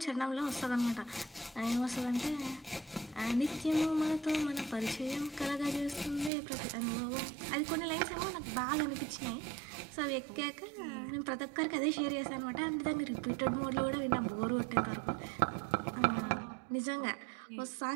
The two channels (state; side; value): drops out; left; at 6.3 s